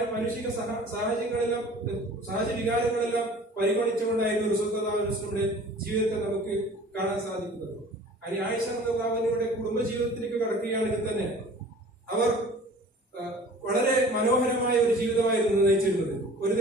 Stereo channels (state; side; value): normal; both; correlation 0.46